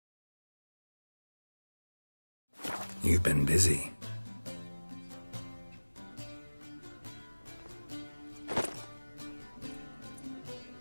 You've been busy.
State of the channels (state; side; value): inverted; both; correlation -1.00